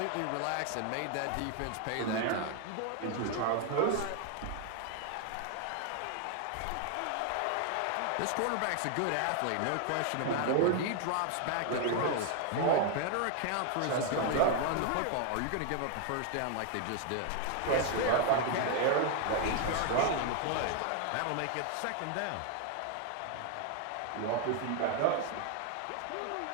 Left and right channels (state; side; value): different; both; correlation 0.00